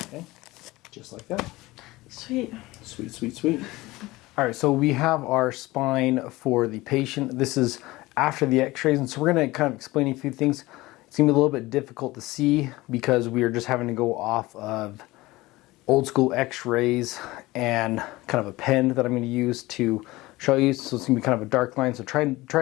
Okay, just like that. Sweet. Sweet, sweet, sweet. All right, so we have our spine for the patient. This is after the x-rays, and so we're going to kind of explain a few things. It's going to be a little bit difficult to see because we are just having to go off of old school x-rays and kind of a pen that I'm going to use to show you. So it's going to be kind of a dark line, so try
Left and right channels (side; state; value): right; quieter; 19.8 dB